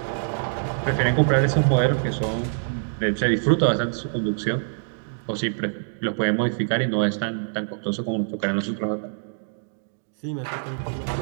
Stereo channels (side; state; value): left; silent; digital silence